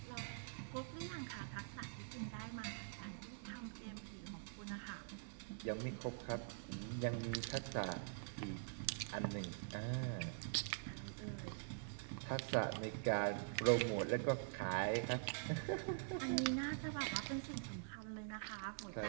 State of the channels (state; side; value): silent; left; digital silence